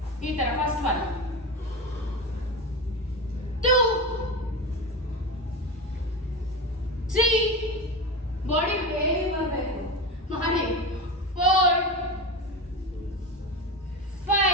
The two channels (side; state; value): both; normal; correlation 0.22